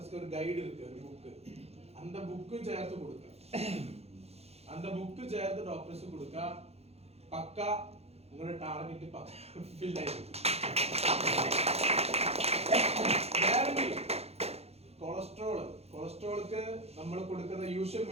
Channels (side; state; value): left; late; 0.30 ms